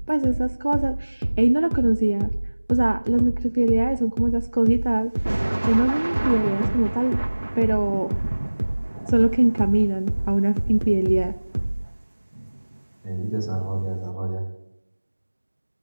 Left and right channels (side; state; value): both; inverted; correlation -1.00